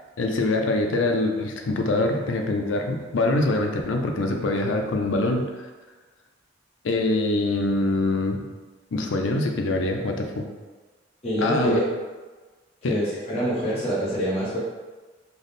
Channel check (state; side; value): normal; both; correlation 0.42